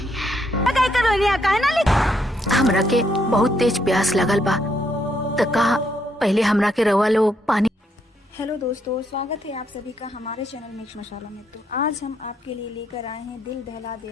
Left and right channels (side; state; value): both; normal; correlation 0.74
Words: काय करोनिया काहे ना लिख। हमरा के बहुत तेज प्यास लगल बा, त कहा पहले हमरा के रवा लोग पानी। हेलो दोस्तों, स्वागत है आप सभी का हमारे चैनल मिक्स मसाला में। तो आज हम आपके लिए लेकर आए हैं दिल दहला